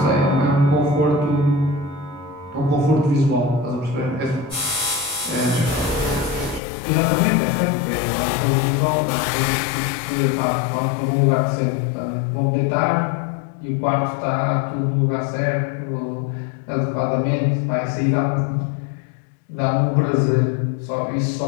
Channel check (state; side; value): drops out; right; at 6.6 s